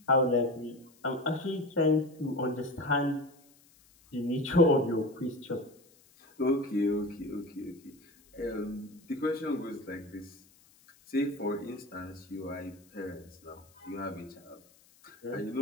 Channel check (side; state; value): left; noise; hiss, 29 dB below the sound